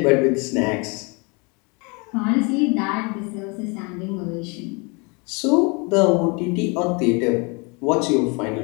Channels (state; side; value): quieter; right; 30.5 dB